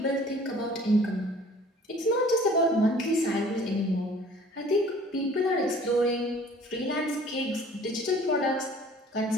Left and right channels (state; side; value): normal; both; correlation 0.51